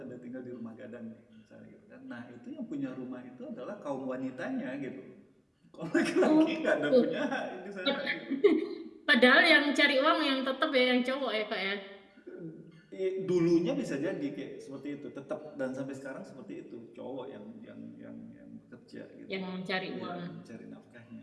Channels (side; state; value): both; identical; correlation 1.00